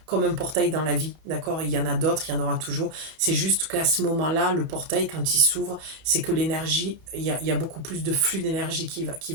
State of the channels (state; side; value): late; left; 32 ms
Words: comme un portail dans la vie, d'accord? Il y en a d'autres, il y en aura toujours. C'est juste qu'à ce moment-là, le portail, quand il s'ouvre, c'est que l'énergie, il y a beaucoup plus de flux d'énergie qui